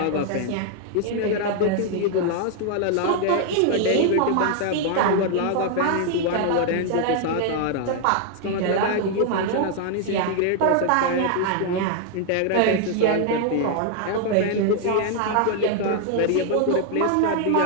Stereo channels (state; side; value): different; both; correlation 0.00